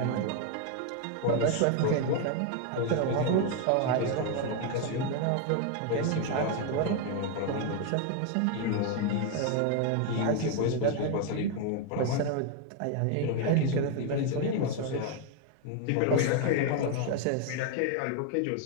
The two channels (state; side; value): different; both; correlation 0.01